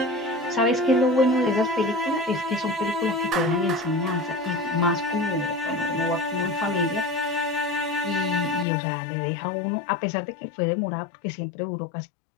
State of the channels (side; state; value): right; drops out; at 8.7 s